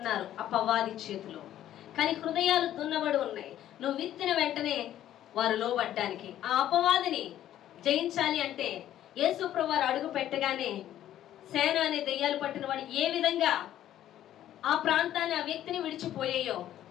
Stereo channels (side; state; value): right; quieter; 12.1 dB